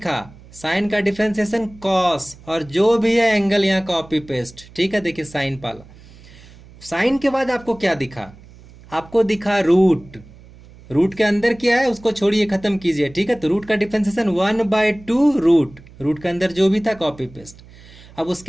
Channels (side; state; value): right; noise; hum, 22 dB below the sound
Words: साइन का डिफरेंशिएशन कॉस, और जो भी है एंगल यहाँ कॉपी पेस्ट। ठीक है, देखिए साइन पाला, साइन के बाद आपको क्या दिखा? आपको दिखा रूट। रूट के अंदर क्या है उसको छोड़िए, खत्म कीजिए। ठीक है, तो रूट का डिफरेंशिएशन 1/2 रूट, रूट के अंदर जो भी था कॉपी पेस्ट। अब